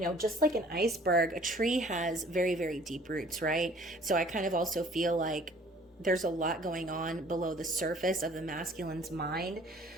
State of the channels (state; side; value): normal; both; correlation 0.54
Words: know, just like an iceberg, a tree has very, very deep roots, right? So I kind of also feel like there's a lot going on below the surface of the masculine's mind.